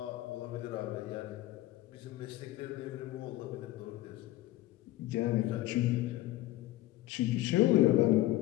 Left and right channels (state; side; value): quieter; right; 16.3 dB